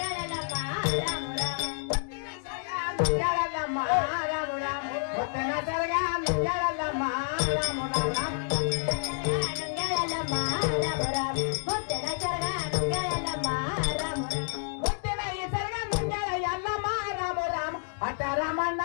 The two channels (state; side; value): silent; right; digital silence